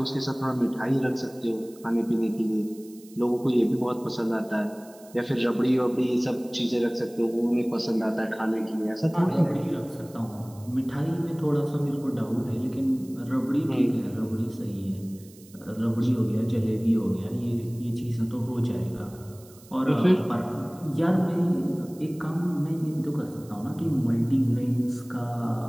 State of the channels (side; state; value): right; noise; hiss, 24 dB below the sound